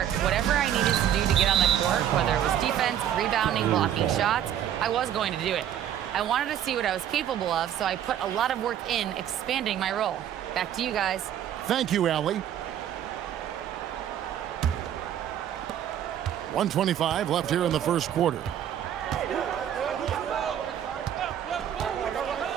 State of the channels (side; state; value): left; quieter; 10.4 dB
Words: whatever I needed to do to get on the court, whether it was defense, rebounding, blocking shots, I was going to do it. I wanted to see what I was capable of, so I put a lot of work in expanding my role. Back to you guys. Thank you, Allie. 1:25 left here in the first quarter.